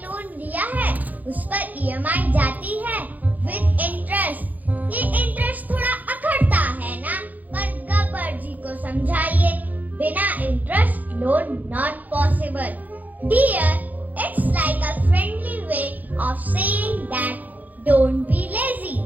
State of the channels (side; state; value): left; late; 0.081 ms